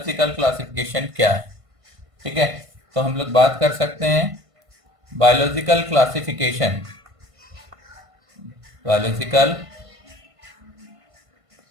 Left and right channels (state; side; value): late; left; 1.5 ms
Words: क्लासिफिकेशन क्या है। ठीक है, तो हम लोग बात कर सकते हैं बायोलॉजिकल क्लासिफिकेशन। बायोलॉजिकल